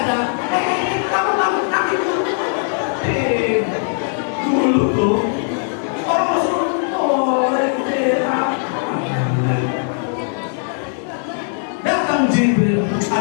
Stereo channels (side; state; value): right; silent; 57 dB below the other